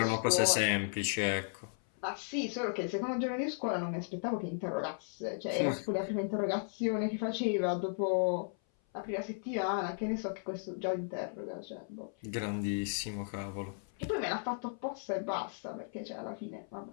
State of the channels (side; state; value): right; silent; 54 dB below the other